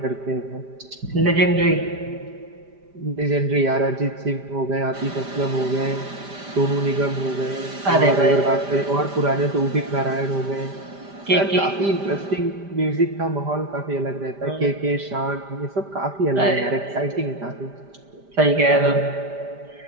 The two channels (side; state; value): left; late; 5.0 ms